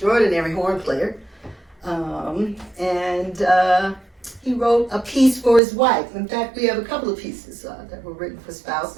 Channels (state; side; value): drops out; left; at 5.6 s